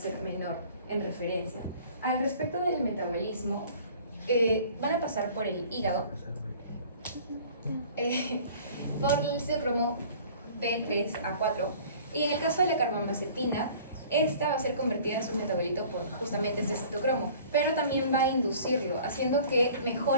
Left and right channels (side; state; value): both; inverted; correlation -0.49